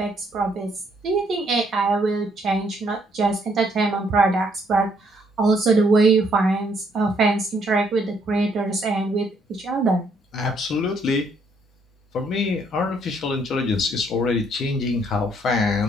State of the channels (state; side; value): normal; both; correlation 0.69